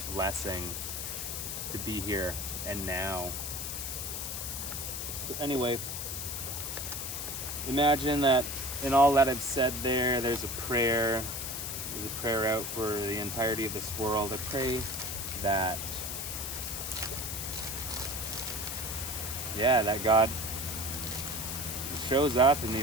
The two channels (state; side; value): noise; left; hiss, 4 dB below the sound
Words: blessing to be here and now. So anyway, imagine that in all that I've said there's a prayer. There's a prayer out for the entirety of this world. I pray that God shows up in